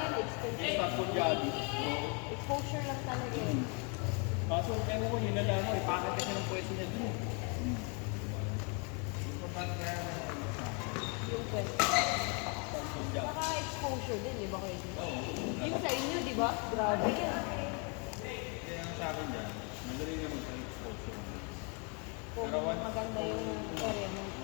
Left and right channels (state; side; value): quieter; right; 35.0 dB